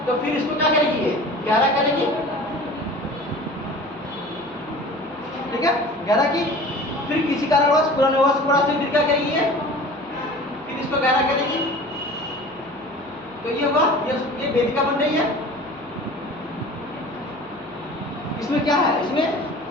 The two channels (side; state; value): right; noise; hum, 26 dB below the sound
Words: तो फिर इसको क्या करेगी? ये गहरा करेगी, ठीक है, गहरा की। फिर किसी कारणवश पूरा क्या करेगी? ये फिर इसको गहरा करेगी, तो ये हुआ, ये वेदिका बन रही है। इसमें क्या है, इसमें